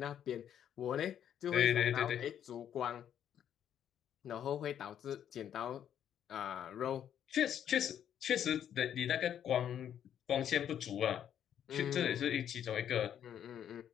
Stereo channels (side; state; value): right; quieter; 9.7 dB